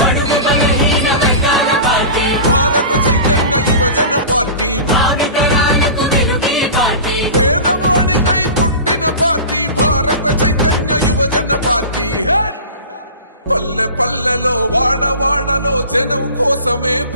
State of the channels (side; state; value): both; inverted; correlation -0.34